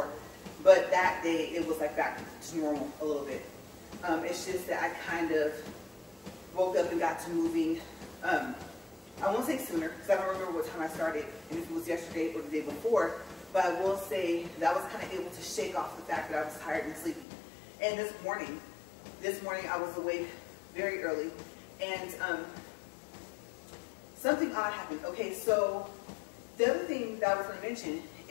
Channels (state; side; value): drops out; right; at 17.2 s